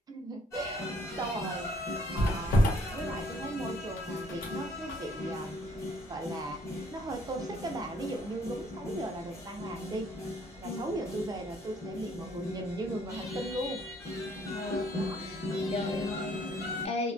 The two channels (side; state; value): both; normal; correlation 0.63